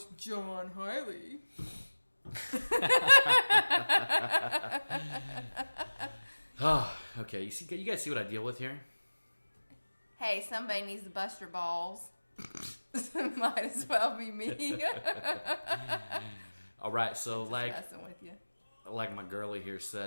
John Hiley. Oh, okay. You guys see what I deal with here? Hey, somebody needs to bust your balls. Might as well be me. All right, so just messing with you. Like my girlie here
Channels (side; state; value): both; inverted; correlation -1.00